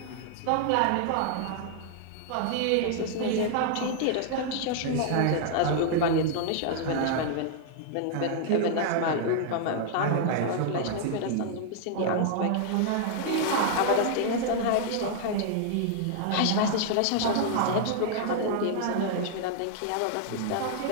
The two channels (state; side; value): different; both; correlation 0.00